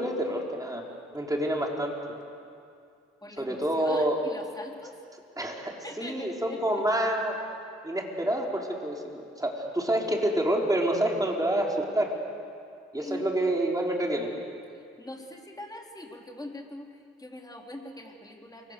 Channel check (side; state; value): both; normal; correlation 0.67